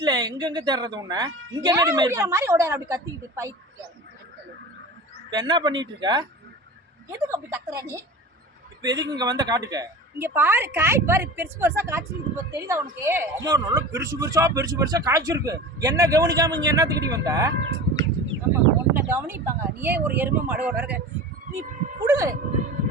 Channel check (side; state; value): both; normal; correlation 0.34